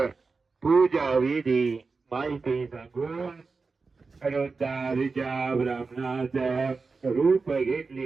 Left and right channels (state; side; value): quieter; left; 4.3 dB